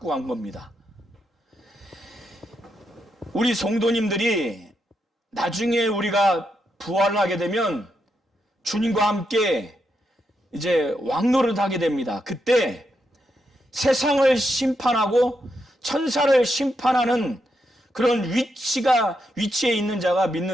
간 겁니다. 우리 성도님들이 나중에 우리가 부활을 하게 되면 주님과 함께 이제 왕노릇 하게 됩니다. 그때 세상을 심판하고 천사를 심판하는 그런 위치에 있는 자가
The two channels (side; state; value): both; normal; correlation 0.82